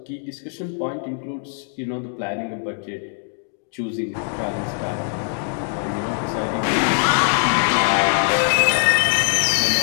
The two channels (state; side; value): silent; right; 64 dB below the other